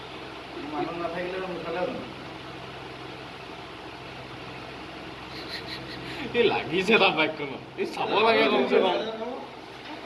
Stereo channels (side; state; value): both; identical; correlation 1.00